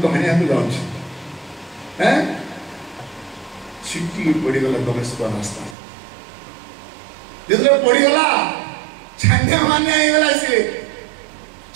तो हानि आके जाउछ हैं छिटी पड़ी गला दमस्क रास्ता जेतले पड़ी गला छान्या मान्या हे गला से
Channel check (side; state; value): left; drops out; at 5.8 s